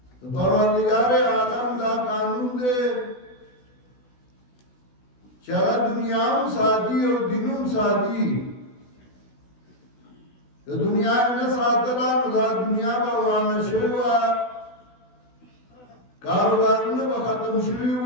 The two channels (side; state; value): right; late; 16 ms